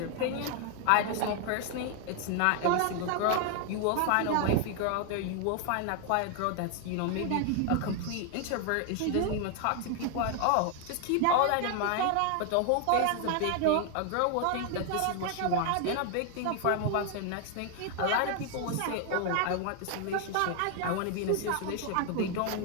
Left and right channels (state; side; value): different; both; correlation 0.01